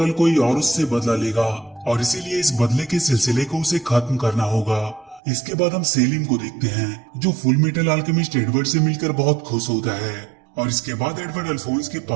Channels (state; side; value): drops out; left; at 5.2 s